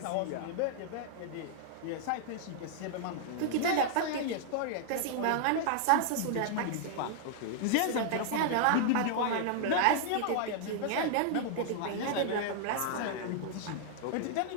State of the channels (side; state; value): both; different; correlation -0.01